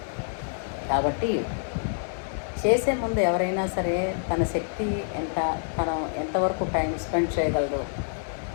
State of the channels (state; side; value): silent; right; digital silence